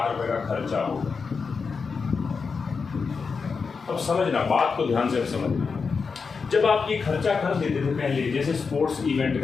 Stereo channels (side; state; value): right; quieter; 5.2 dB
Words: रुपए का खर्चा होगा। अब समझना, बात को ध्यान से समझना। जब आप ये खर्चा कर देते थे पहले, जैसे स्पोर्ट्स इवेंट